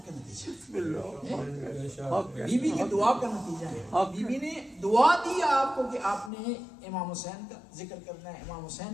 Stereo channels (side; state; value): right; drops out; at 6.3 s